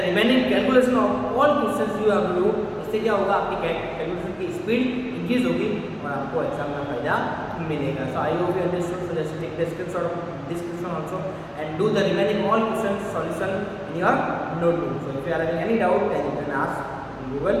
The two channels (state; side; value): identical; both; correlation 1.00